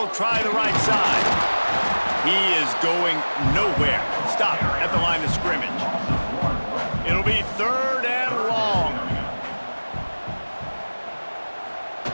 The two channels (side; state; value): both; inverted; correlation -1.00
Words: try the right side. He is going nowhere. Stop at the line of scrimmage. It'll be 3rd and long.